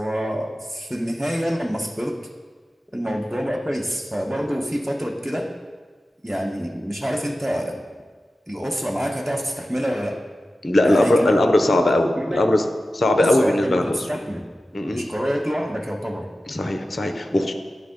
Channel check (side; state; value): both; normal; correlation 0.94